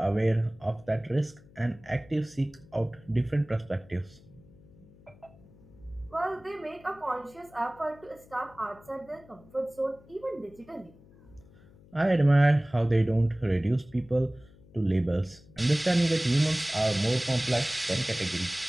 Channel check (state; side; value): noise; left; hum, 25 dB below the sound